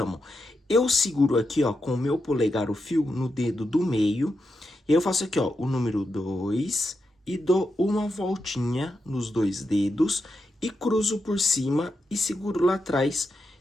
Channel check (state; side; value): normal; both; correlation 0.86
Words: Eu seguro aqui, ó, com o meu polegar o fio no dedo do meio. E eu faço aqui, ó, o número 2 e dou uma voltinha nos dois dedos e cruzo por cima e seguro lá atrás.